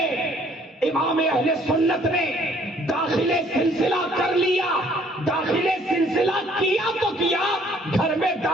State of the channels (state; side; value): normal; both; correlation 0.61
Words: امام اہل سنت نے داخل سلسلہ کر لیا۔ داخل سلسلہ کیا تو کیا، گھر میں